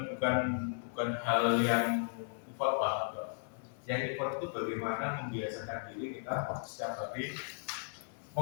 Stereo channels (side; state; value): right; silent; digital silence